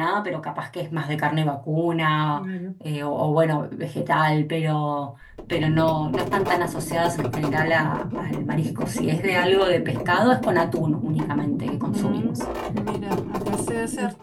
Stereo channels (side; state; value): both; identical; correlation 1.00